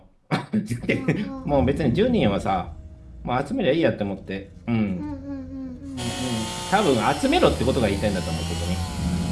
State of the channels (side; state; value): both; identical; correlation 1.00